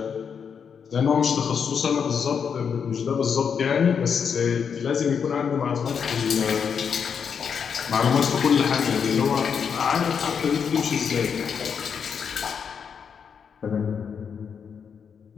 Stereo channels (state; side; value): quieter; right; 6.8 dB